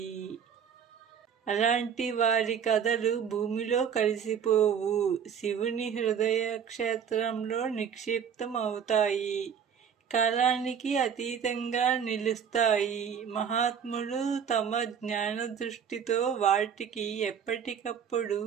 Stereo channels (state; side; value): quieter; left; 7.6 dB